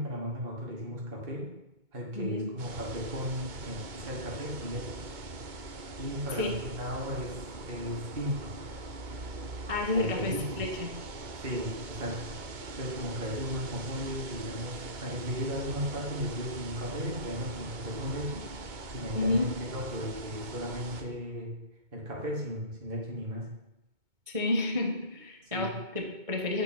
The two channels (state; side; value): late; left; 2.2 ms